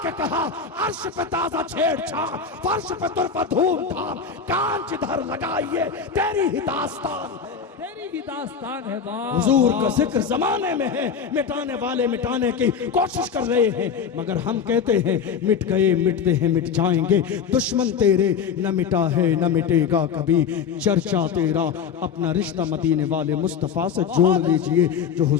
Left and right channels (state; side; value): quieter; right; 6.5 dB